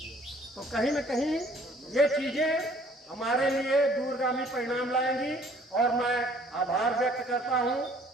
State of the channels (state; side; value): normal; both; correlation 0.57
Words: तो कहीं न कहीं ये चीजें हमारे लिए दूरगामी परिणाम लाएंगी। और मैं आभार व्यक्त करता हूं